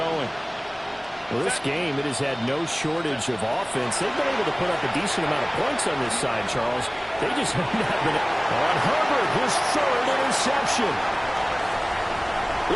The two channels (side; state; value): both; identical; correlation 1.00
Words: Well, this game, it has had no shortage of offense. They've been able to put up a decent amount of points on this side, Charles. They just have not been... On Herbert, his third interception.